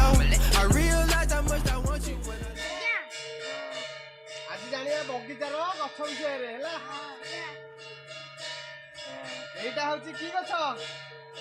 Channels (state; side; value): identical; both; correlation 1.00